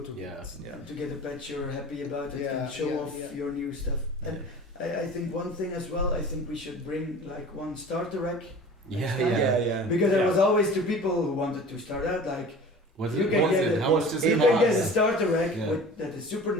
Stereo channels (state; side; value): normal; both; correlation 0.41